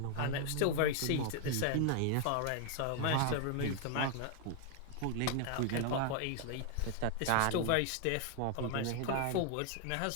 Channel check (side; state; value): both; different; correlation 0.00